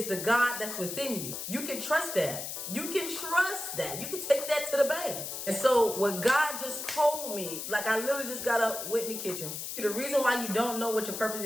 the God that's within you. You can trust that. You can trust that. You can take that to the bank. And so what God just told me, like, I literally just got up, went in the kitchen. The reason why you don't know what your purpose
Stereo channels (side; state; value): left; noise; hiss, 6 dB below the sound